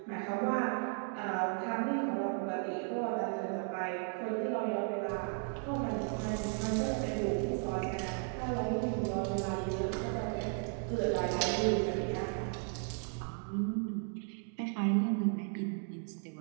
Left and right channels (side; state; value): left; quieter; 39.4 dB